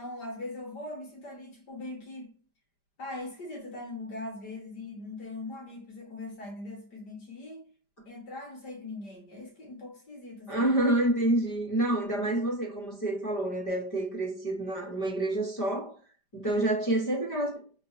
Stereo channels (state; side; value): late; right; 5.0 ms